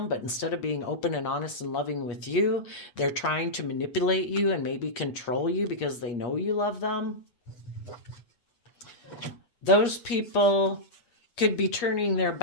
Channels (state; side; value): late; right; 8.4 ms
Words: but instead of being open and honest and loving with you, they're trying to manipulate you and maybe control you because they know you love them, those people could be turning their